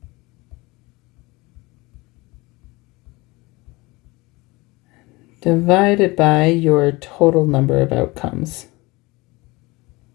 divided by your total number of outcomes.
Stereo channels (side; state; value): right; quieter; 23.1 dB